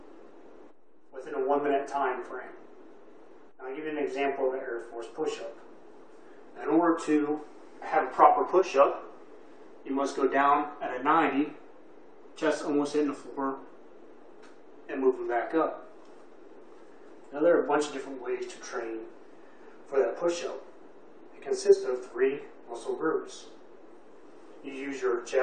within a 1-minute time frame. Now I'll give you an example of the Air Force push-up. In order to have a proper push-up, you must go down at a 90, chest almost hitting the floor, and moving back up. Now there are a bunch of different ways to train for that push-up. It consists of 3 muscle groups. You use your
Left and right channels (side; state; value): both; identical; correlation 1.00